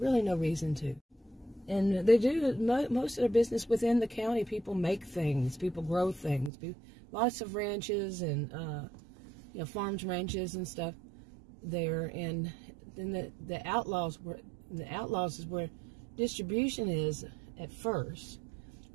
no reason to. And they do most of their business within the county. People make things, people grow things. Lots of ranches and you know, farms, ranches and stuff there. And then the Outlaws is where distribution is at first.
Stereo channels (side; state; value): left; drops out; at 6.5 s